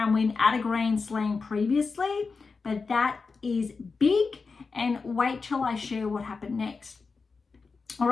win at a Grand Slam previously, but that is big. And wait till I share what happened next. All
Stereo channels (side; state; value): right; quieter; 4.6 dB